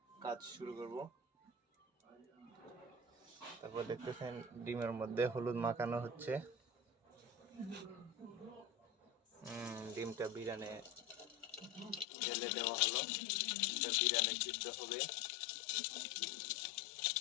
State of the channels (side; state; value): right; drops out; at 12.1 s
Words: কাজ শুরু করব। তারপর দেখতেছেন ডিমের মধ্যে হলুদ মাখানো হচ্ছে। ডিমটা বিরিয়ানি তেলে দেওয়া হলো, বিরিয়ানি সিদ্ধ হবে।